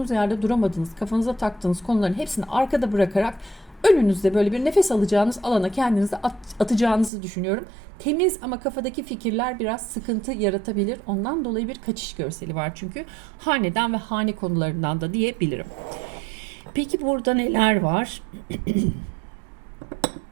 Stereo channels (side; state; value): left; drops out; at 7.1 s